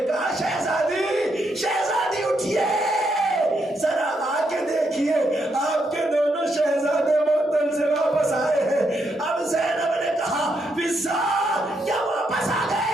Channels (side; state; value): both; normal; correlation 0.78